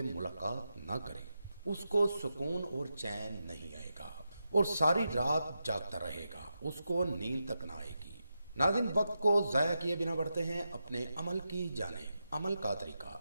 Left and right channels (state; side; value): inverted; both; correlation -0.88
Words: मुलाकात ना करे, उसको सुकून और चैन नहीं आएगा और सारी रात जागता रहेगा, उसको नींद तक ना आएगी। नाज़रीन, वक्त को ज़ाया किए बिना बढ़ते हैं अपने अमल की जानिब। अमल का तरीका: